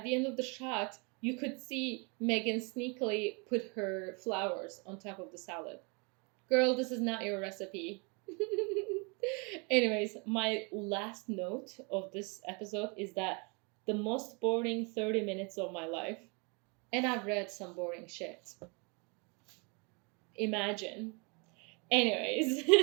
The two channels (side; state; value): left; quieter; 31.7 dB